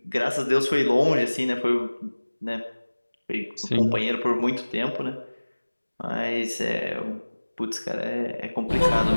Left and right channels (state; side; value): inverted; both; correlation -1.00